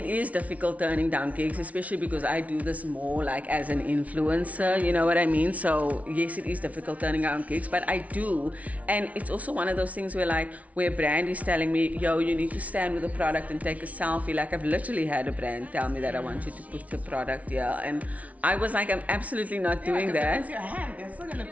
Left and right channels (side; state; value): left; late; 0.068 ms